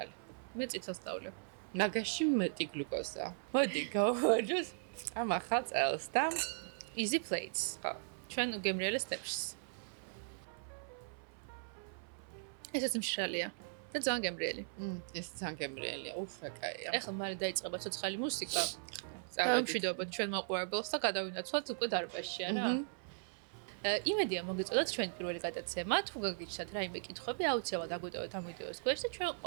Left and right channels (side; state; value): left; silent; 52 dB below the other